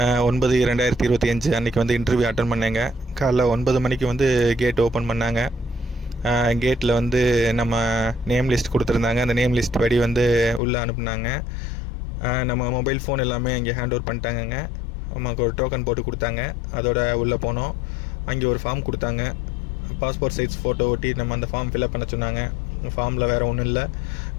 அன்றைக்கி வந்து இன்டர்வியூ அட்டன் பண்ணேங்க. காலைல 9 மணிக்கு வந்து கேட் ஓப்பன் பண்ணாங்க. கேட்டில் வந்து நம்ம நேம் லிஸ்ட் கொடுத்துருந்தாங்க. அந்த நேம் லிஸ்ட் படி வந்து உள்ளே அனுப்புனாங்க. நம்ம மொபைல் ஃபோன் எல்லாமே அங்கே ஹேண்ட் ஓவர் பண்ணிட்டாங்கங்க. நமக்கு ஒரு டோக்கன் போட்டு கொடுத்தாங்க. அதோட உள்ளே போனோம். அங்கே ஒரு ஃபார்ம் கொடுத்தாங்க. பாஸ்போர்ட் சைஸ் ஃபோட்டோ ஒட்டி நம்ம அந்த ஃபார்ம் ஃபில்அப் பண்ண சொன்னாங்க. ஃபார்மில் வேறு ஒன்றும் இல்லை,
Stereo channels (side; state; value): right; drops out; at 10.6 s